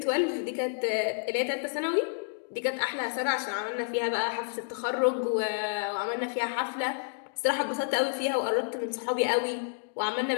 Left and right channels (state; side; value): silent; right; digital silence